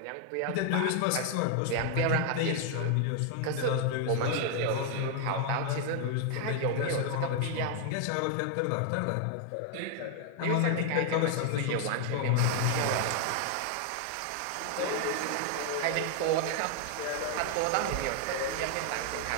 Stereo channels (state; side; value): different; both; correlation 0.00